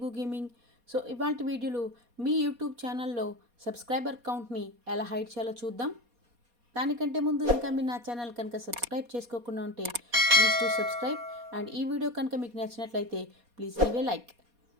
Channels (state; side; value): late; left; 4.2 ms